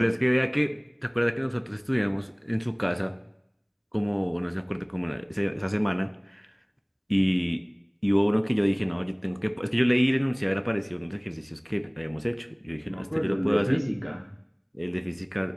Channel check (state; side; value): identical; both; correlation 1.00